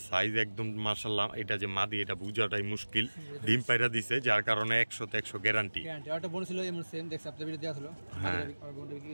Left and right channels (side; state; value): both; inverted; correlation -1.00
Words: সাইজ একদম মাশাআল্লাহ, এটা যে মাদি এটা বুঝাটাই মুশকিল, ডিম পাইরা দিছে যার কারণে 100 গ্যারান্টি। একটা বোন ছিল এমন সেম দেখছ আপনি ভিডিও দেয়া ছিল,